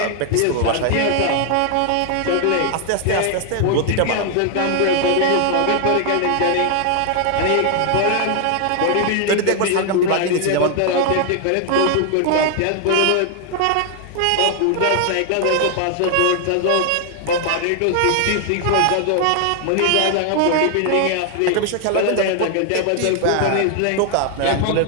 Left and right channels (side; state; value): both; different; correlation 0.00